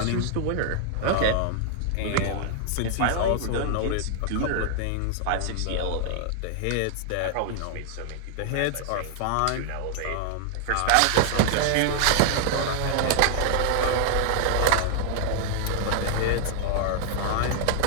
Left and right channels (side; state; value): both; different; correlation 0.00